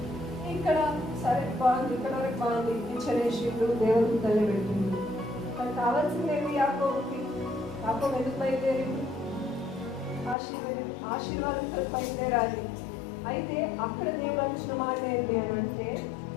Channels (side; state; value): right; drops out; at 10.4 s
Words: ఇక్కడ సరే బాగుంది, ఇక్కడ వరకు బాగుంది. నిచ్చెనేసిండు, దేవుడికి తల్లి పెట్టిండు. కానీ కావాల్సింది ఏమి యాకోబుకి? యాకోబు ఎందుకు బయలుదేరింది? ఆశీర్వాదంతో బయలుదేరాలి. అయితే అక్కడ దేవుడు వచ్చిన మాట ఏంటి అని అంటే,